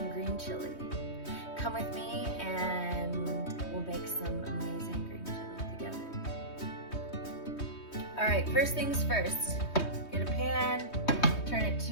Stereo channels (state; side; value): late; right; 3.2 ms